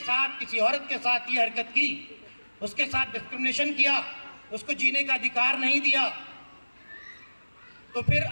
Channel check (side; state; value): both; inverted; correlation -1.00